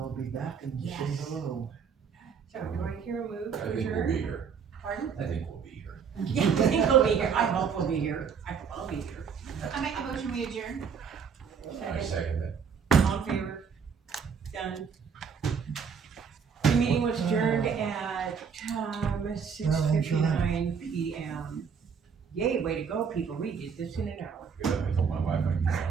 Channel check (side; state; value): left; quieter; 6.4 dB